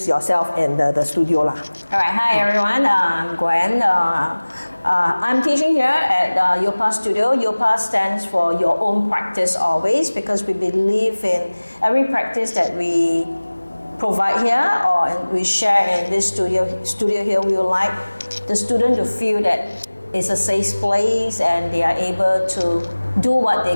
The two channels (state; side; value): inverted; both; correlation -1.00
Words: yourself and the studio lah. All right. Hi everyone. I'm Gwen. I'm teaching here at Yopa Studio. Yopa stands for Your Own Practice Always, because we believe in every practice that we provide here or we share in this studio here. We would like the student to feel that it's a safe place and they are able to do what they